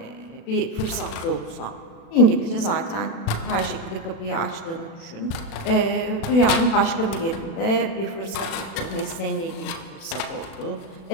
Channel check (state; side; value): late; right; 36 ms